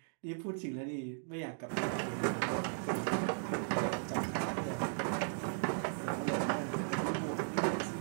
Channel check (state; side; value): silent; left; digital silence